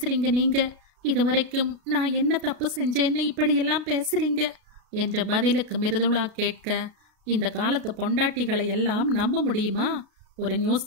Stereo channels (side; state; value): left; late; 33 ms